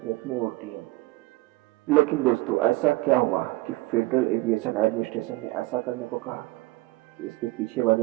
में उड़ती हैं। लेकिन दोस्तों, ऐसा क्या हुआ कि फेडरल एविएशन एडमिनिस्ट्रेशन ने ऐसा करने को कहा? इसके पीछे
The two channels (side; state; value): left; quieter; 20.1 dB